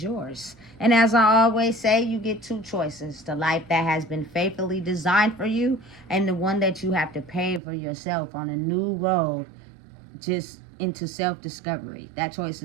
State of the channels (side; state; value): left; drops out; at 7.6 s